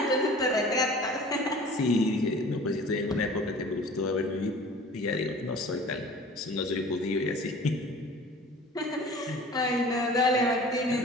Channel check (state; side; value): normal; both; correlation 0.44